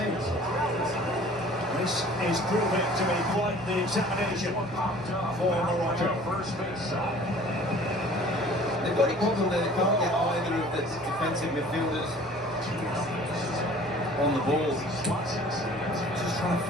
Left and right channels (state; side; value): normal; both; correlation 0.49